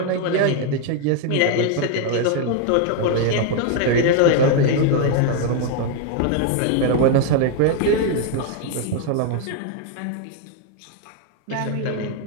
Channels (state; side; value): different; both; correlation 0.01